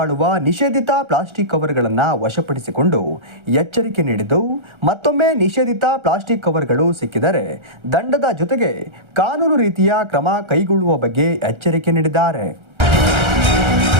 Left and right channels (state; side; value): late; left; 1.3 ms